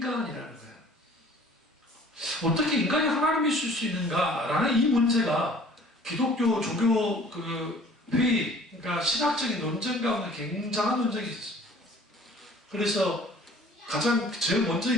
거예요. 어떻게 인간이 하나님이실 수 있는가라는 이 문제가 기독교 종교 회의, 그러니까 신학적인 논쟁 가운데 굉장한 논쟁이 있었습니다. 그래서 가장 제일 먼저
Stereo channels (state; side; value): normal; both; correlation 0.51